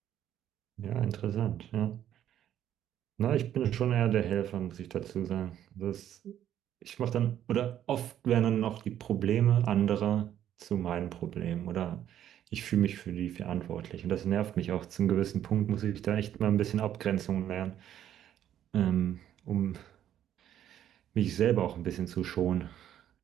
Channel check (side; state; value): left; quieter; 10.9 dB